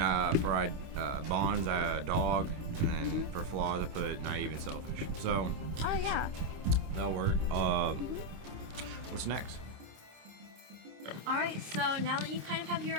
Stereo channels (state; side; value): late; left; 26 ms